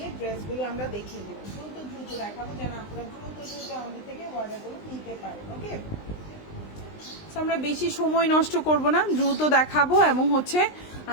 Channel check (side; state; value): right; late; 20 ms